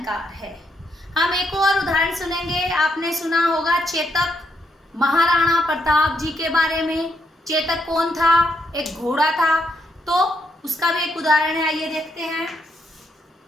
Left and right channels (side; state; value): both; normal; correlation 0.77